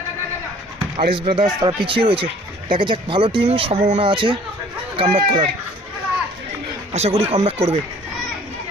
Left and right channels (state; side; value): normal; both; correlation 0.53